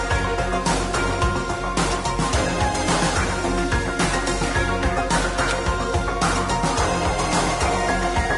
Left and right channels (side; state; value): both; identical; correlation 1.00